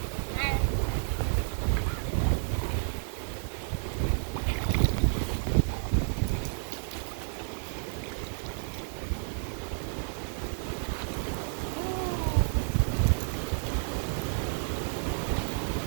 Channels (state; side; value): silent; left; digital silence